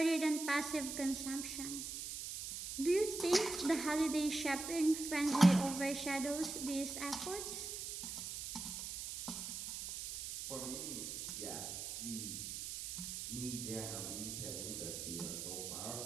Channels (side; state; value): right; noise; hiss, 5 dB below the sound